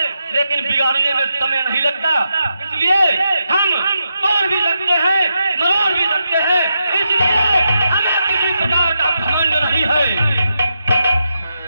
लेकिन बिगाड़ने में समय नहीं लगता। इसलिए हम तोड़ भी सकते हैं, मरोड़ भी सकते हैं, इसलिए हमें किसी प्रकार का घमंड नहीं है।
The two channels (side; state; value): both; inverted; correlation -0.85